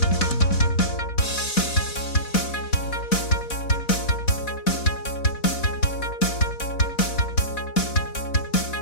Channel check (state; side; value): late; right; 4.1 ms